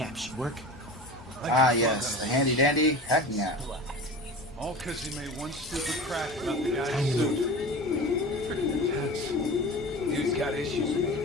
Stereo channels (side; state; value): both; normal; correlation 0.34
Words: app should work. Ah, yes, the handy dandy hacking app. All because he made one stupid crack about the guy's suit. Freaking intense. Dude's got issues.